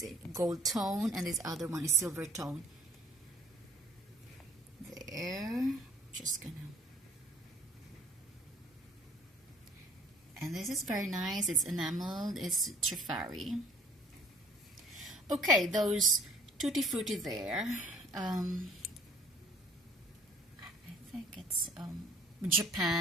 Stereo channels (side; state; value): both; normal; correlation 0.54